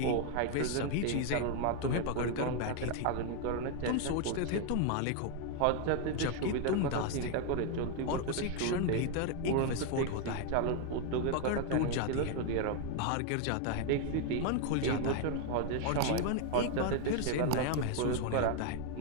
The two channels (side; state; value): both; different; correlation 0.01